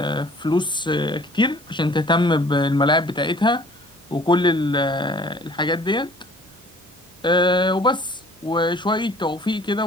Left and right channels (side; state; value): both; normal; correlation 0.52